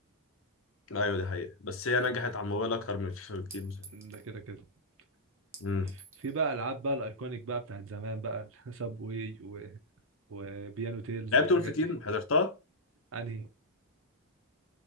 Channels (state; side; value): normal; both; correlation -0.06